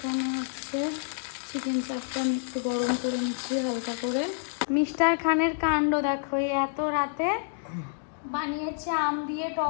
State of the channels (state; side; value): silent; right; digital silence